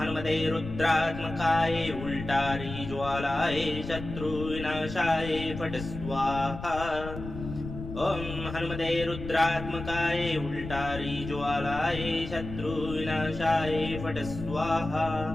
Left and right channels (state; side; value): noise; left; rumble, 9 dB below the sound